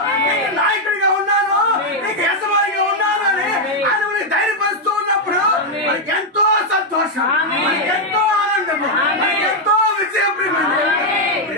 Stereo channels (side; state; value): both; normal; correlation 0.01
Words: నీకు నాయకుడిగా ఉన్నాను, నీకు యజమానిగా ఉన్నాను అని ఆయన మనకి ధైర్యపరుస్తూ ఉన్నప్పుడు మనకి ఎంతో సంతోషం, మనకి ఎంతో ఆనందము, మనకి ఎంతో విజయం.